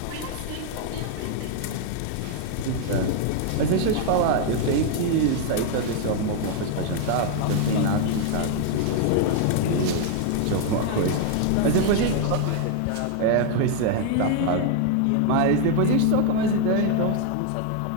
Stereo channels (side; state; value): both; different; correlation 0.00